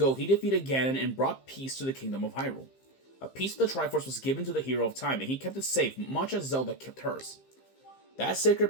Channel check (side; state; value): right; late; 15 ms